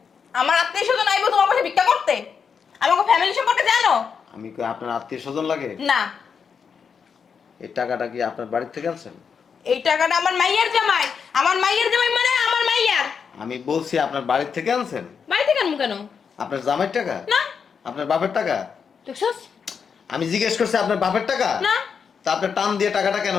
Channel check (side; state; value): right; quieter; 6.4 dB